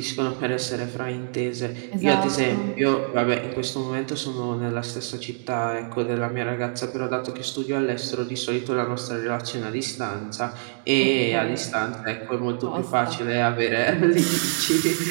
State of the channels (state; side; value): silent; left; 57 dB below the other